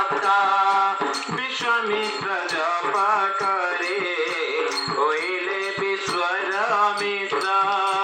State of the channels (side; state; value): both; identical; correlation 1.00